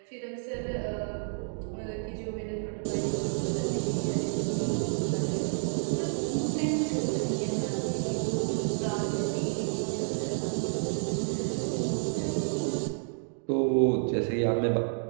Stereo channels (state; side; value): silent; left; digital silence